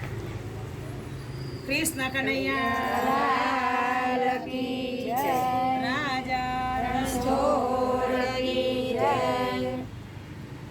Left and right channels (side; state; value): both; identical; correlation 1.00